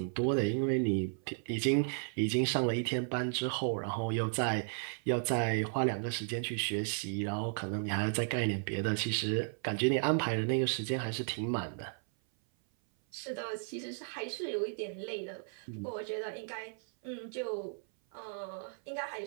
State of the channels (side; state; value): left; silent; 55 dB below the other